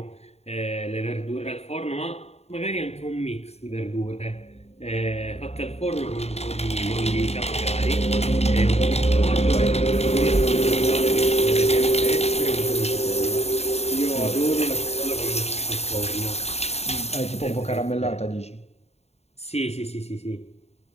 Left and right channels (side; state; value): right; late; 0.31 ms